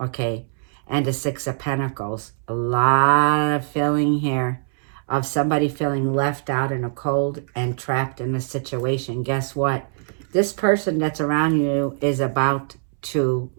And the Six of Pentacles. A lot of feeling here of somebody feeling left out in a cold and trapped in a situation. Guess what? This person that's around you is about to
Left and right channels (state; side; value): silent; left; 64 dB below the other